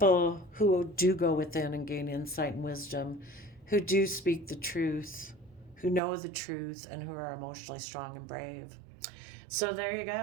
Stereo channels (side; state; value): left; drops out; at 6.0 s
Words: who do go within and gain insight and wisdom, who do speak the truth, who know the truth, and who are emotionally strong and brave. So there you